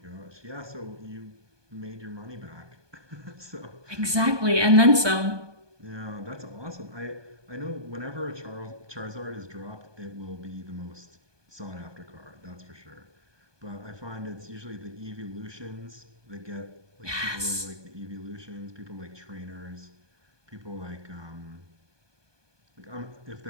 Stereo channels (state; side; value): late; left; 1.2 ms